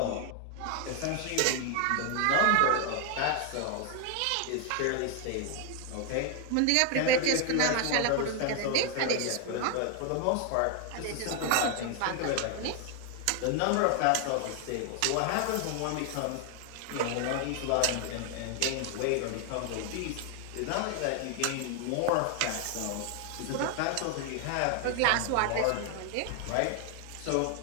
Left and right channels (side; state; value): both; different; correlation 0.01